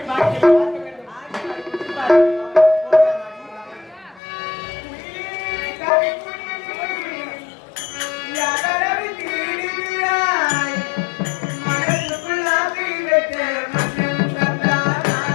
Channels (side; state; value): right; drops out; at 4.2 s